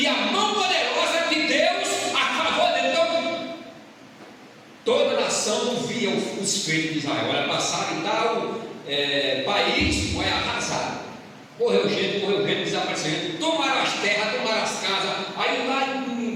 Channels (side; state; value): both; identical; correlation 1.00